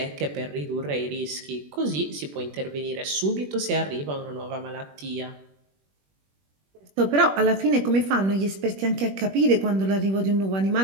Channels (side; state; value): left; late; 21 ms